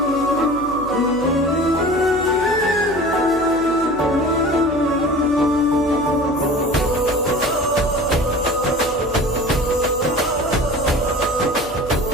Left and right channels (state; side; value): noise; left; hum, 18 dB below the sound